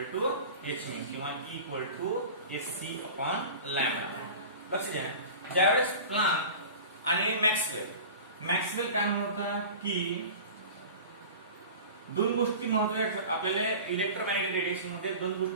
to h mu किंवा E equal to SC upon lambda. लक्ष द्या, ज्यावेळेस प्लँक आणि मॅक्सवेल काय म्हणतात की दोन गोष्टी महत्त्वाच्या आपल्याला इलेक्ट्रोमॅग्नेटिक रेडिएशन मध्ये दोन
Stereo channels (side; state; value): both; inverted; correlation -0.36